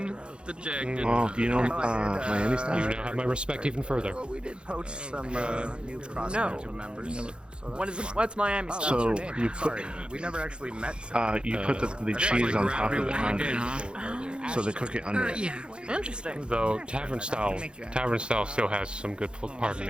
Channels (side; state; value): left; late; 0.053 ms